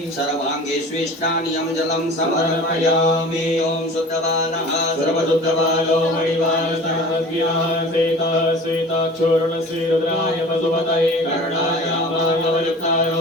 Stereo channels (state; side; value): normal; both; correlation 0.41